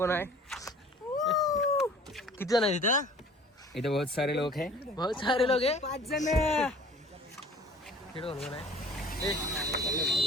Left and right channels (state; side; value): normal; both; correlation 0.49